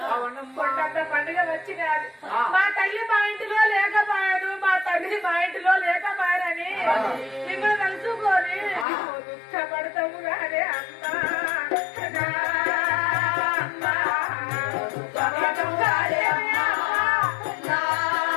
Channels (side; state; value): right; drops out; at 8.8 s